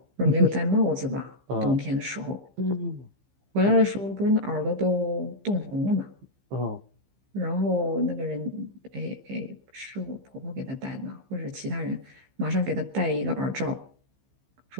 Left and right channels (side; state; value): left; late; 15 ms